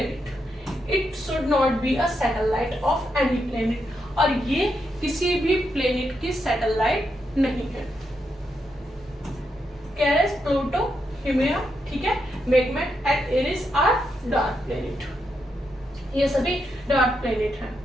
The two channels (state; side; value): normal; both; correlation 0.82